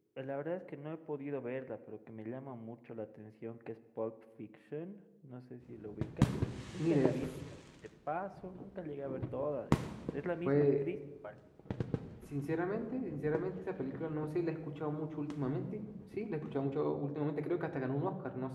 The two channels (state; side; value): identical; both; correlation 1.00